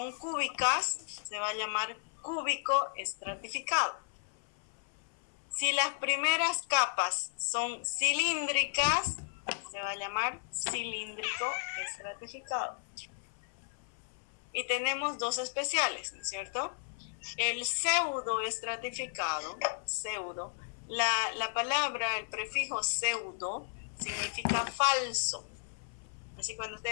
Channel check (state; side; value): silent; right; 55 dB below the other